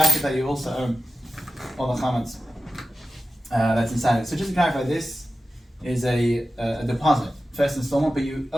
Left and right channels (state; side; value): normal; both; correlation 0.95